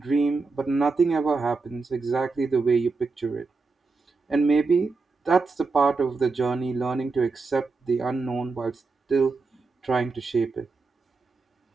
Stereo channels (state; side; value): quieter; left; 4.1 dB